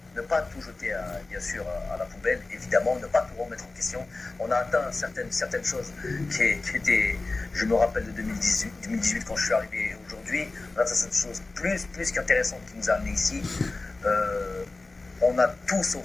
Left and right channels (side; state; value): right; quieter; 3.3 dB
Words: tout jeter bien sûr à la poubelle, évidemment, ne pas tout remettre en question. On a atteint certaines choses qui étaient, je me rappelle de 2018 quand je suis arrivé aujourd'hui, on a atteint cette chose plus qu'intéressante qui nous a amené ici. On a tout